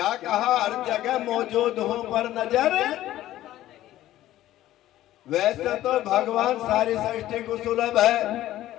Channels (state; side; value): quieter; right; 14.2 dB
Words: कहा, हर जगह मौजूद हूं पर नजर। वैसे तो भगवान सारी सृष्टि को सुलभ है,